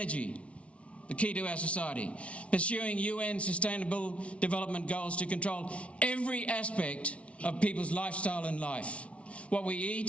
the key to our society. Pursuing UN Sustainable Development Goals to control every aspect of people's lifestyle and life. What we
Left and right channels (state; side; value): late; right; 0.062 ms